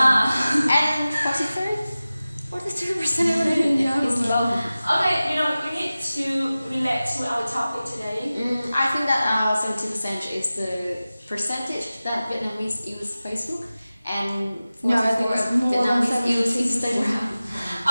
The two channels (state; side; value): inverted; both; correlation -0.96